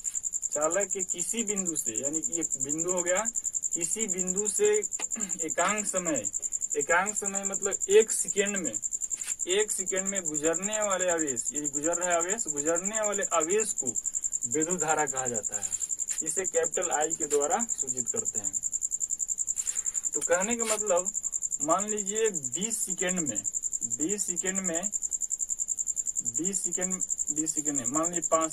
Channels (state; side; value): identical; both; correlation 1.00